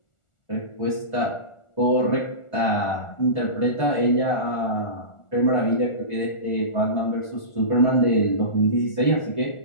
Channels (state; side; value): late; right; 1.4 ms